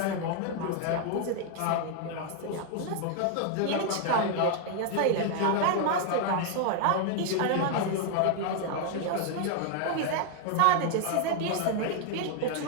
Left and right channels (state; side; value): different; both; correlation 0.00